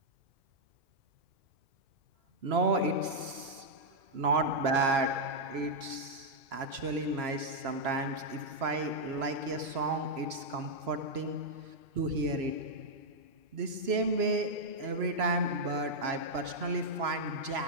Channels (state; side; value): late; left; 3.0 ms